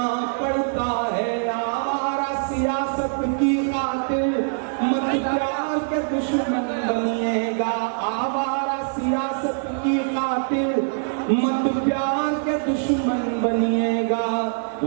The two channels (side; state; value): left; silent; 56 dB below the other